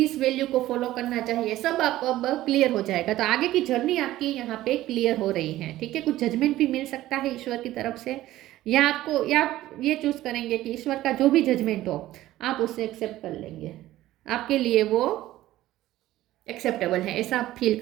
वैल्यू को फॉलो करना चाहिए, सब आपको अब क्लियर हो जाएगा। तो आगे की जर्नी आपकी यहाँ पे क्लियर हो रही है, ठीक है। कुछ जजमेंट भी मिल सकता है ईश्वर की तरफ से, या आपको, या आप ये चूज करेंगे कि ईश्वर का जो भी जजमेंट हो आप उससे एक्सेप्ट कर लेंगे, आपके लिए वो एक्सेप्टेबल है, ऐसा आप फील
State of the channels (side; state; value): left; quieter; 15.2 dB